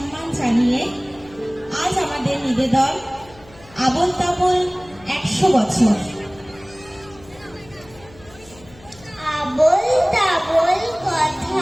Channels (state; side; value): noise; left; hum, 24 dB below the sound